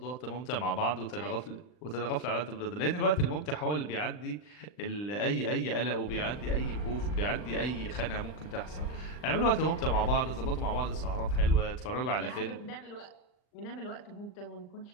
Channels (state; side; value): late; right; 39 ms